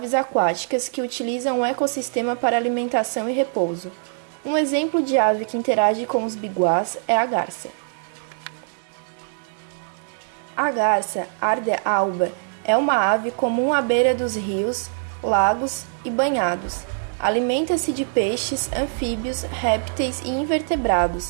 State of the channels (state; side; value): silent; left; 61 dB below the other